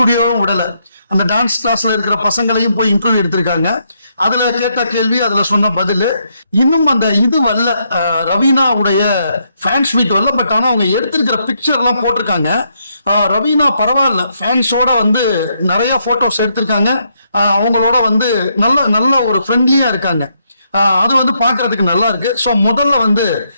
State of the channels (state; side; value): inverted; both; correlation -0.76